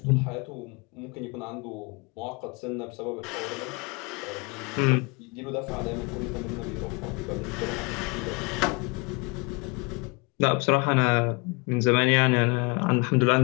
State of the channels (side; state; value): right; quieter; 29.7 dB